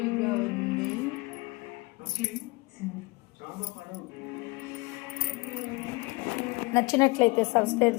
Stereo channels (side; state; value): right; quieter; 25.3 dB